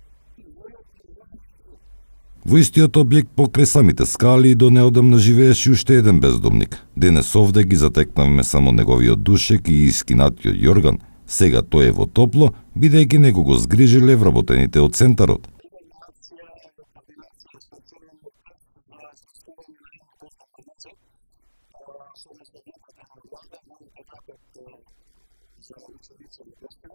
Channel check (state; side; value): inverted; both; correlation -1.00